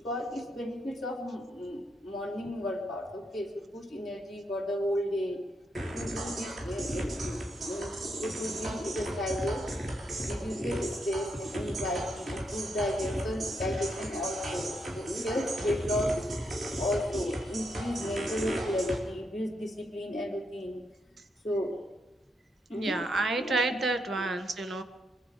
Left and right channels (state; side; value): normal; both; correlation 0.79